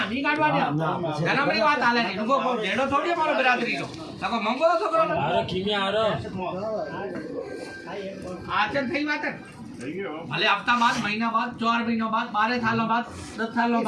ની કાઢવાની ધર્મની વાત હાલે ની નુગો ભેડો થોડી મારો બરાદરી નો તકો મંગો છોકરો अरे किमिया आ रहा આચન થઈ વાત ભલે હપ્તા બાદ મહિના બાદ 4 મહિના બાદ 12 સાલો બાદ 10 સાલો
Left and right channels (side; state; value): both; identical; correlation 1.00